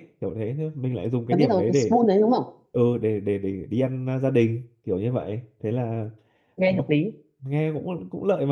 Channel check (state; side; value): identical; both; correlation 1.00